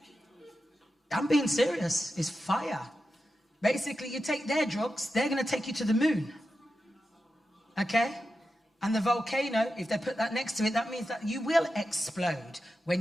I'm being serious. It's fire. Basically, you take their drugs, they're going to take you to the moon. Okay? And the volcano, if they put that next to it, that means that you will explode when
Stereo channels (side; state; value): both; normal; correlation 0.90